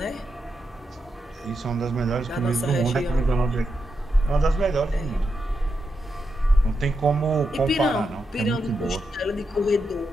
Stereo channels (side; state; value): both; normal; correlation 0.85